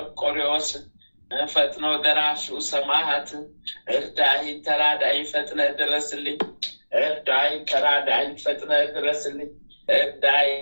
ፈጥኖ ደራሹ ሰማዕት እርዳኝ ተራዳኝ ፈጥነ ድረስልኝ። እርዳኝ ተራዳኝ ፈጥነ ድረስልኝ። እርዳኝ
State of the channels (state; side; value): inverted; both; correlation -1.00